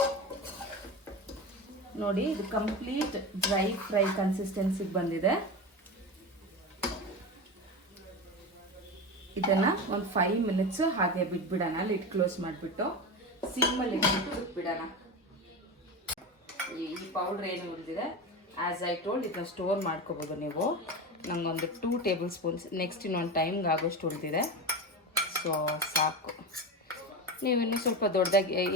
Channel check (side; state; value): both; normal; correlation 0.23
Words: ನೋಡಿ ಇದು ಕಂಪ್ಲೀಟ್ ಡ್ರೈ ಫ್ರೈ ಕನ್ಸಿಸ್ಟೆನ್ಸಿಗೆ ಬಂದಿದೆ. ಇದನ್ನು ಒಂದು 5 ಮಿನಿಟ್ಸು ಹಾಗೆ ಬಿಟ್ಬಿಡೋಣ. ಲಿಡ್ ಕ್ಲೋಸ್ ಮಾಡಿಬಿಟ್ಟು ಸಿಮ್ಮಲ್ಲಿ ಇಟ್ಬಿಟ್ಟು ಬಿಟ್ಬಿಡೋಣ. ಈ ಪೌಡ್ರ್ ಏನು ಉಳಿದಿದೆ ಆ್ಯಸ್ ಐ ಟೋಲ್ಡ್ ಇದನ್ನ ಸ್ಟೋರ್ ಮಾಡ್ಕೋಬೋದು ನೀವು. ನನಗೊಂದು 2 ಟೇಬಲ್ ಸ್ಪೂನ್ಸ್ ನೆಕ್ಸ್ಟ್ ಇನ್ನೊಂದು ಟೈಮ್ಗೆ ಆಗೋಷ್ಟು ಉಳಿದಿದೆ. ಸೊ ಸಾಕು. ನೀವು ಇನ್ನೂ ಸ್ವಲ್ಪ ದೊಡ್ಡದಾಗಿ